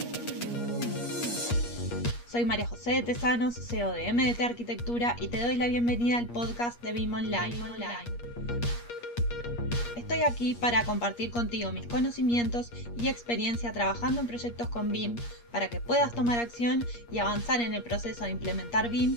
Soy María José de Tesanos, CEO de MDT Arquitectura, y te doy la bienvenida al podcast de BIM Online. Estoy aquí para compartir contigo mis conocimientos y experiencia trabajando en proyectos con BIM para que puedas tomar acción y avanzar en el proceso de implementar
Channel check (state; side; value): late; right; 8.5 ms